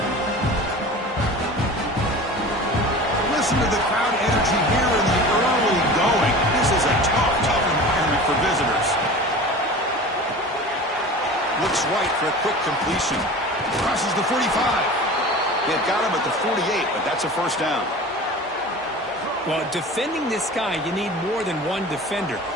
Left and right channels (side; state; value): both; normal; correlation 0.37